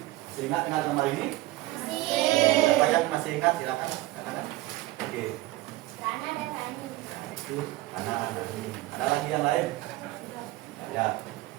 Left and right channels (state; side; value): quieter; left; 18.2 dB